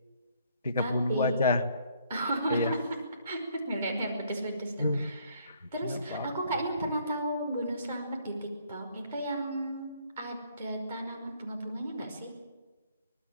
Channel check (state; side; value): inverted; both; correlation -0.65